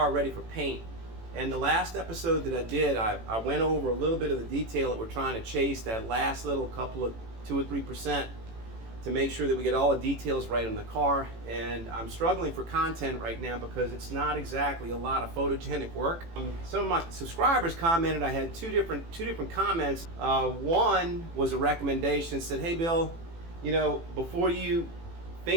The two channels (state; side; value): late; left; 18 ms